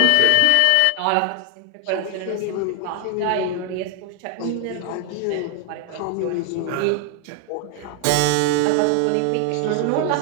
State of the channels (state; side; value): different; both; correlation 0.00